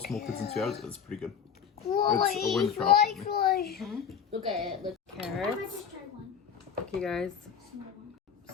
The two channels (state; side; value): quieter; right; 7.4 dB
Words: small kids and 2 adults, it's pretty good. It's a win trial for me. look at it. Look. Carrots. Okay, guys.